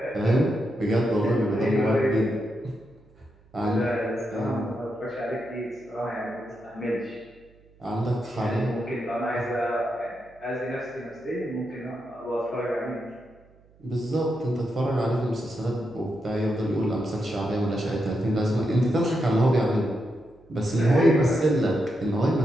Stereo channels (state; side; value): noise; right; hum, 29 dB below the sound